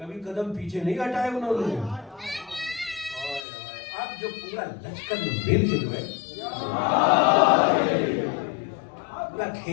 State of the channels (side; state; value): right; drops out; at 3.5 s